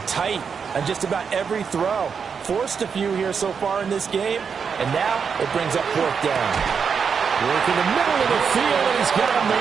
tight on just about every throw. Forced a few here so far in this game, and now it brings up 4th down. Work in the middle of the field, and he's got a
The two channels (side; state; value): left; quieter; 6.3 dB